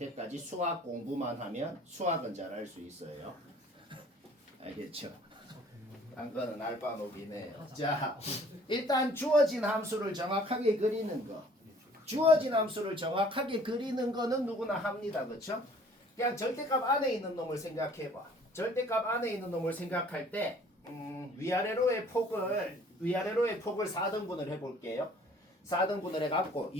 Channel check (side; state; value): both; normal; correlation 0.54